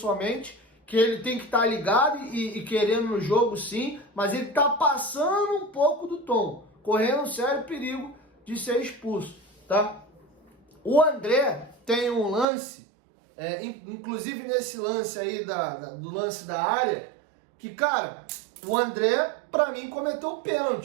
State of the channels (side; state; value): left; drops out; at 12.5 s